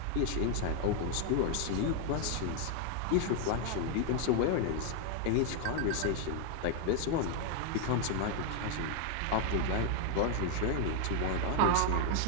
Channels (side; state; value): both; different; correlation 0.00